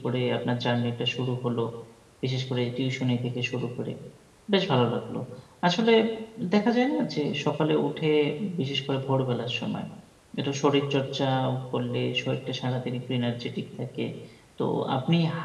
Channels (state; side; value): identical; both; correlation 1.00